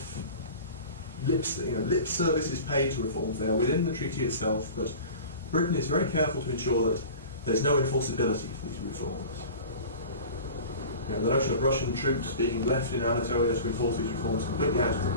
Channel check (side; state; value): both; inverted; correlation -0.38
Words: lip service is paid to reforms there within the treaty itself, but Britain is very careful to ensure that there's no enforceability for these reforms. The notion of Russian troops being left in Anatolia to enforce these reforms is completely out of the